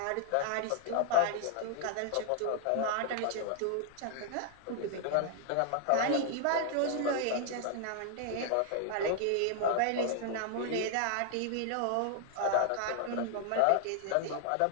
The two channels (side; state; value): both; different; correlation 0.00